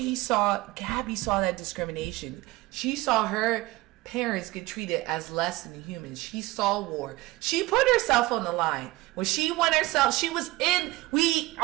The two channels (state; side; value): quieter; left; 19.8 dB